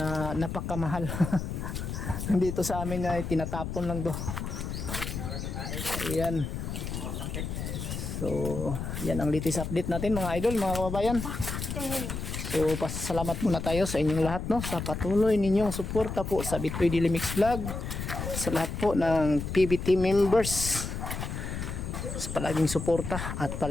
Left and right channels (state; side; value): noise; left; rumble, 5 dB below the sound